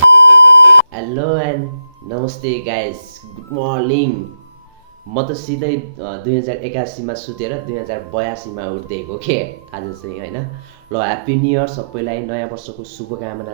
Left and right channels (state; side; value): late; left; 14 ms